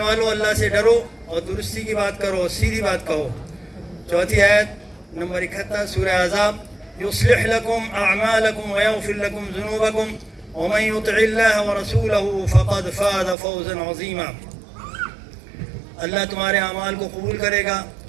والو، اللہ سے ڈرو اور درستی کی بات کرو، سیدھی بات کہو۔ چوتھی آیت نمبر 71 سورہ احزاب، یصلح لکم اعمالکم ویغفر لکم ذنوبکم ومن یطع اللہ ورسولہ فقد فاز فوزا عظیما۔ اللہ تمہارے اعمال کو قبول کرے گا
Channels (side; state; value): left; drops out; at 13.4 s